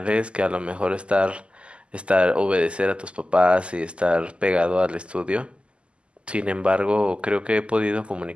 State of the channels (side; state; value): left; late; 0.053 ms